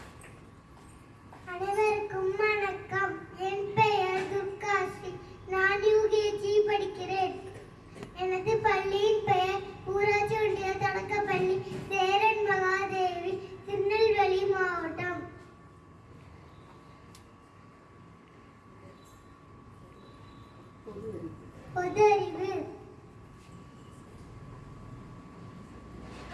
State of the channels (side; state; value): both; identical; correlation 1.00